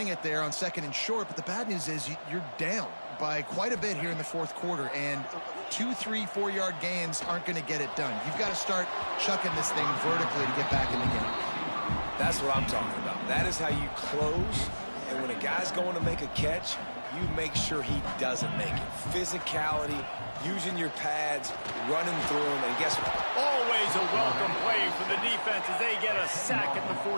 it there on 2nd and short, but the bad news is you're down by quite a bit here in the fourth quarter, and 2, 3, 4-yard gains aren't going to get it done. You've got to start chucking this thing vertically to get back in the game. That's what I'm talking about. That is how you close, and when a guy's going to make a catch, you make sure he doesn't make it. Physicality, using your pads, running through them, and guess what? Always a welcome play for the defense as they get a sack at the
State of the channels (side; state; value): both; inverted; correlation -1.00